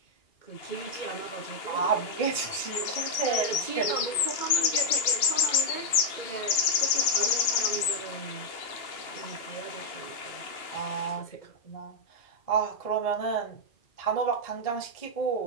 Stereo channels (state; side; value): late; right; 2.8 ms